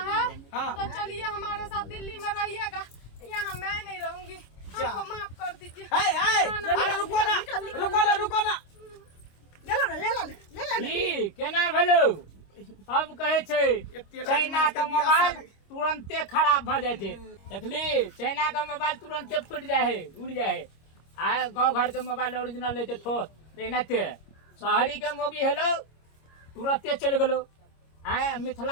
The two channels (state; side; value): late; right; 26 ms